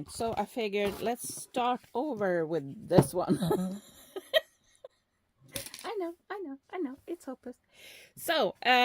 So I figured let's start over with this one. I know. It's hopeless. So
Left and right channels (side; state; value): both; identical; correlation 1.00